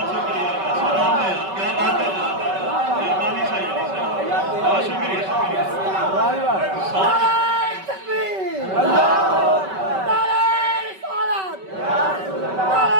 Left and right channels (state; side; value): late; left; 5.2 ms